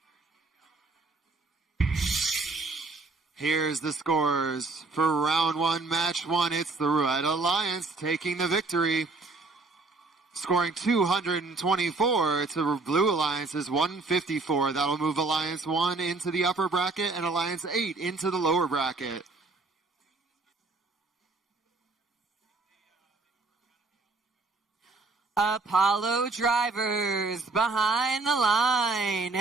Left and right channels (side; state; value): left; quieter; 3.6 dB